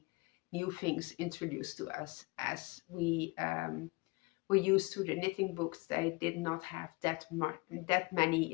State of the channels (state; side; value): quieter; right; 26.2 dB